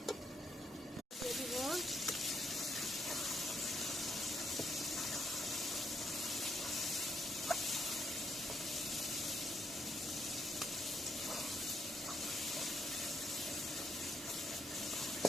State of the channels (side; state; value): both; normal; correlation 0.75